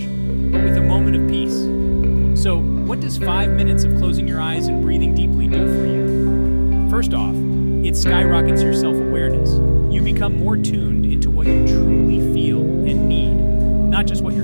but with a moment of peace. So, what does 5 minutes of closing your eyes and breathing deeply do for you? First off, it skyrockets your self-awareness. You become more tuned into what you truly feel and need, not just what your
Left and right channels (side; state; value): both; inverted; correlation -1.00